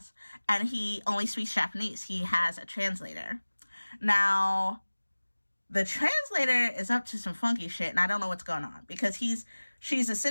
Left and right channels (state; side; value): inverted; both; correlation -1.00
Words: And he only speaks Japanese. He has a translator. Now, the translator is up to some funky shit, and I don't know what's going on, because she's